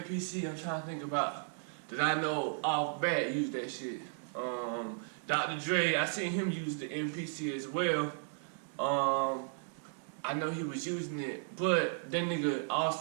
I'm trying to think about that I know off bat used that shit. Dr. Dre, I seen him use the MPC as well. I know he was using it, but that nigga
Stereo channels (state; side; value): silent; left; 54 dB below the other